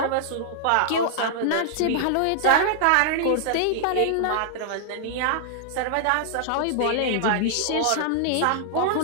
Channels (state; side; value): different; both; correlation -0.01